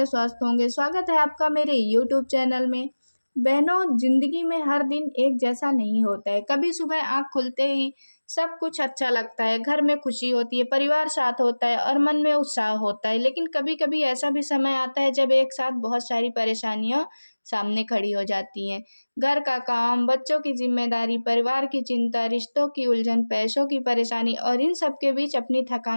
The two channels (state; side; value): inverted; both; correlation -1.00